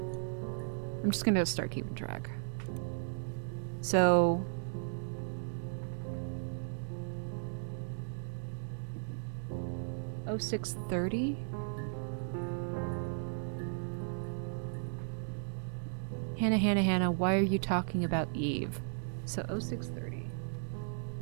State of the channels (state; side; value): silent; left; digital silence